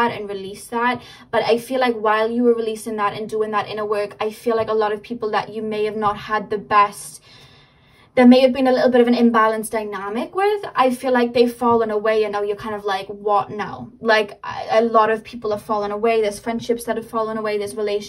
and released that, but I feel like while you were releasing that and doing that inner work, I feel like a lot of people that you may have not had the best, there may have been a little bit of an imbalanced dynamic with, I feel like they've fallen away, and now you're kind of like, what now? Like, a lot of people have fallen away. There's friendships that have fallen away. There's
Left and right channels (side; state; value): both; identical; correlation 1.00